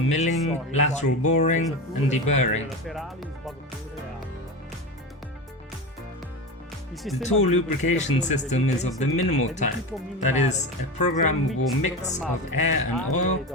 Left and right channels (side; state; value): both; normal; correlation 0.23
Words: lateral boring and deburring. The tool lubrication system is of the minimal type, that is, a programmable mix of air and oil